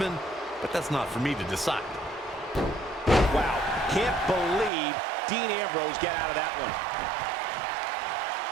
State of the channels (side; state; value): left; drops out; at 4.7 s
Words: but that's not for me to decide. Wow, can't believe Dean Ambrose got out of that one.